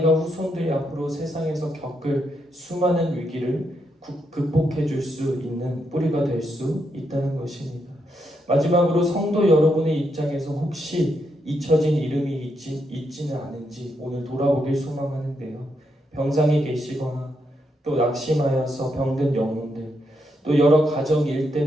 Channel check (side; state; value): both; normal; correlation 0.80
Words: 후손들이 앞으로 세상에서 겪을 수많은 위기를 극복해 줄 수 있는 뿌리가 될 수 있다는 것입니다. 마지막으로 성도 여러분의 입장에서 혹시 잊혀진 이름이 있지는 않은지 오늘 돌아보길 소망하는데요. 병상에 계시거나 또 낙심하여서 병든 영혼들, 또 여러 가정 일